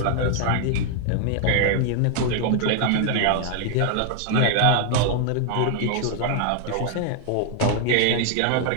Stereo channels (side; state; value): both; different; correlation 0.00